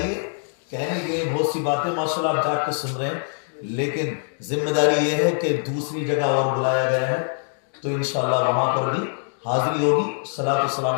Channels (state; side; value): silent; right; digital silence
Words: کہنے کے بہت سی باتیں ماشاءاللہ آپ جا کے سن رہے ہیں لیکن ذمہ داری یہ ہے کہ دوسری جگہ اور بلایا گیا ہے تو انشاءاللہ وہاں پر بھی حاضری ہوگی، صلاۃ و